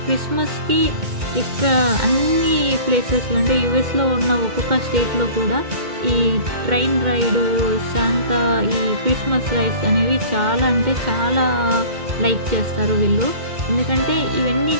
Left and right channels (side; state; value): left; late; 2.2 ms